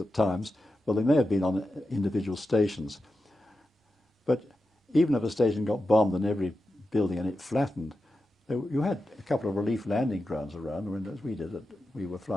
times. Well, they may have been on individual stations, but even if a station got bombed and every building in it flattened, you had a couple of relief landing grounds around. I mean, as we did, we were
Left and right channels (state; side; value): normal; both; correlation 0.91